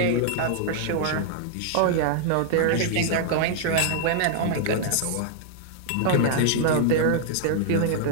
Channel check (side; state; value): both; different; correlation -0.01